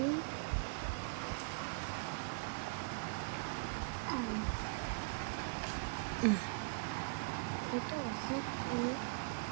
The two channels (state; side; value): quieter; left; 34.9 dB